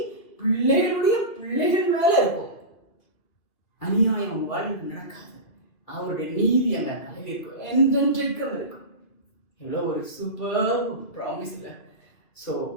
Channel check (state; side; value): late; right; 2.5 ms